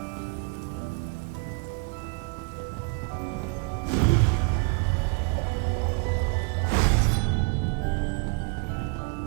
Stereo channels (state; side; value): quieter; left; 32.9 dB